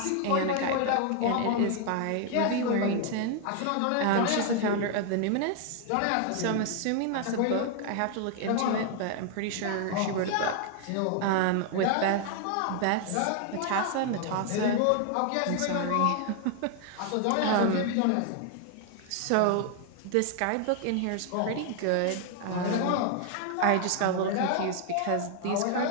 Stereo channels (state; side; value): different; both; correlation 0.00